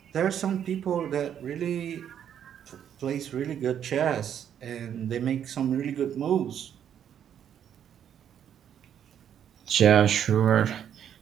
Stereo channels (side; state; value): left; quieter; 9.3 dB